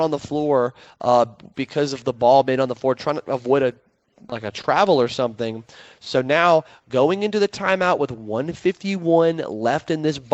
the floor because of the ball being on the floor, trying to avoid a travel or something. So now going into the timeout with 1:51 left in this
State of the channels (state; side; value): identical; both; correlation 1.00